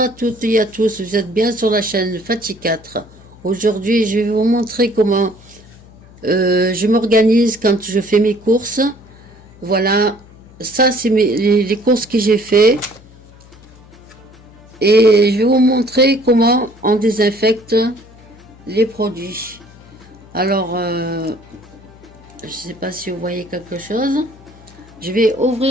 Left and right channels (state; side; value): noise; left; hum, 23 dB below the sound